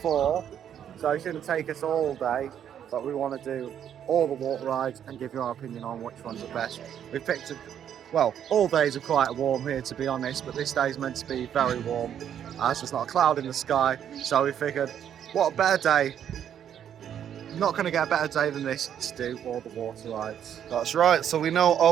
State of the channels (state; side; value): quieter; left; 9.4 dB